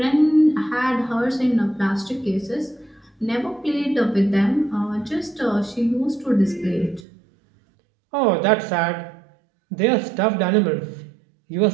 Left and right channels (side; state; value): left; drops out; at 7.1 s